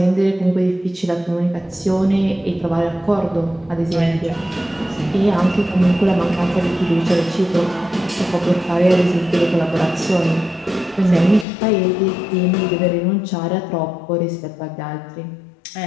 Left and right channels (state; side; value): drops out; right; at 11.5 s